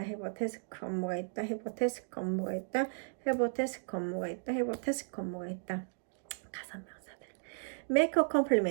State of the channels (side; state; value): left; silent; digital silence